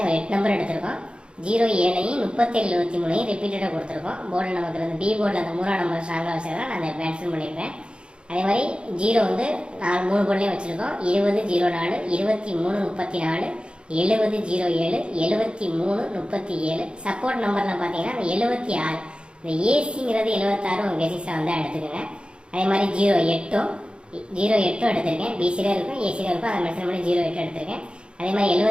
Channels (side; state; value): left; late; 0.055 ms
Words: 8 நம்பர் எடுத்திருக்கோம். 07ஐயும் 37 23ஐயும் ரிப்பீட்டடாக கொடுத்துருக்கோம். போர்டில் நமக்கு அந்த பி போர்டில் அந்த 3ஆம் நம்பர் ஸ்ட்ராங்காக வச்சதான் நான் அதை மென்ஷன் பண்ணியிருப்பேன். அதே மாதிரி 0 வந்து 3 போர்ட்லேயும் வச்சுருக்கோம். 20 04 23 34 70 07 73 37. சப்போர்ட் நம்பரில் பார்த்தீங்கன்னா அந்த 76 இந்த ஏசிங்கிறது 76 உங்கள் கெசிஸில் வந்து எடுத்துக்கோங்க. அதே மாதிரி 08 எடுத்திருக்கேன். பிசியில் இருக்கும் ஏசியில் இருக்கும், அதை மென்ஷன் பண்ணி 08 எடுத்திருக்கேன். அதே மாதிரி